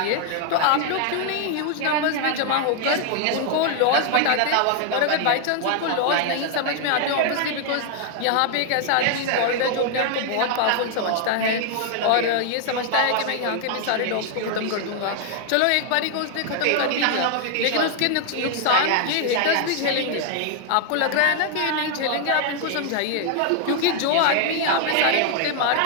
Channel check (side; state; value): both; different; correlation 0.00